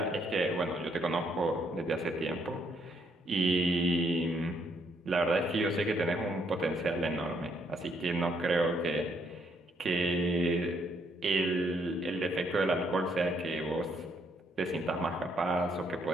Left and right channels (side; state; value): both; normal; correlation 0.72